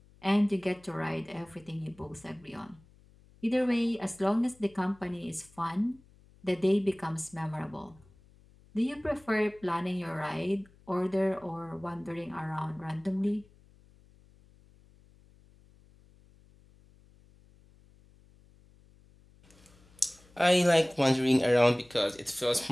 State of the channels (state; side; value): noise; left; hum, 27 dB below the sound